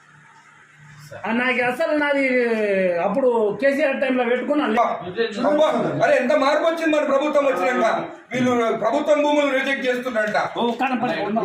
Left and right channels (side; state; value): both; identical; correlation 1.00